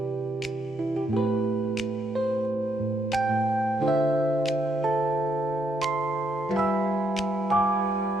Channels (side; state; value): both; normal; correlation 0.76